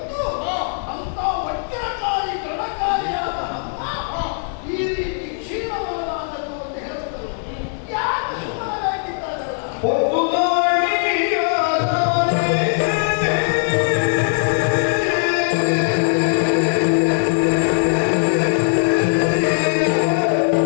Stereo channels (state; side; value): silent; right; digital silence